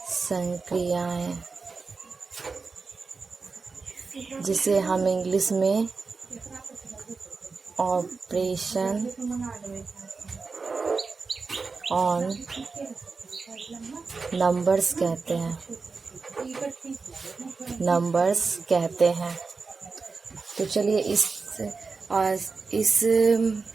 संक्रियाएं, जिसे हम इंग्लिश में ऑपरेशन ऑन नंबर्स कहते हैं। तो चलिए इस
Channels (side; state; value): left; quieter; 4.4 dB